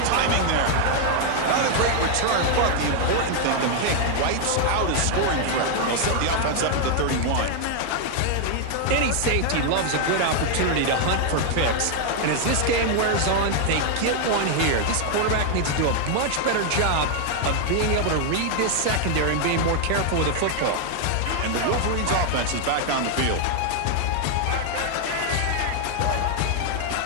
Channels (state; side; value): different; both; correlation 0.00